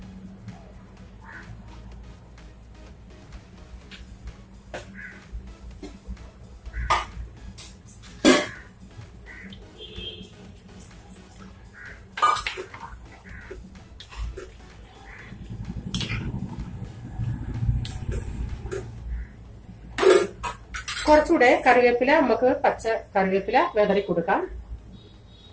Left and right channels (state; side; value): identical; both; correlation 1.00